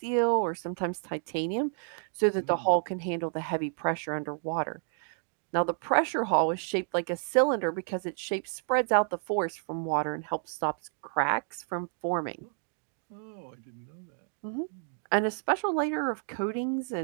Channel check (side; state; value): left; silent; 58 dB below the other